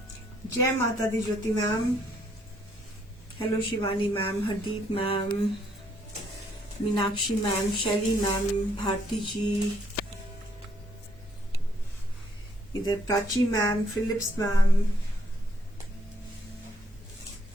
जय माता दी Jyoti ma'am, hello Shivani ma'am, Hardeep ma'am, Meenakshi ma'am, Shaili ma'am, Bharti ji, इधर Prachi ma'am, Philips ma'am,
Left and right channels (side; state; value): both; normal; correlation 0.69